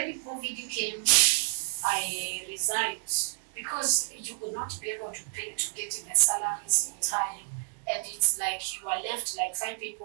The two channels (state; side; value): silent; left; digital silence